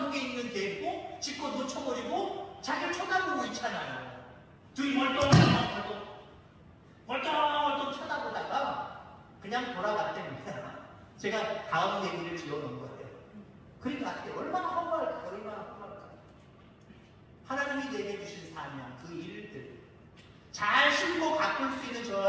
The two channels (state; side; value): identical; both; correlation 1.00